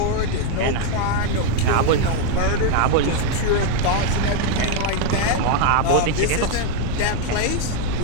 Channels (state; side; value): different; both; correlation 0.01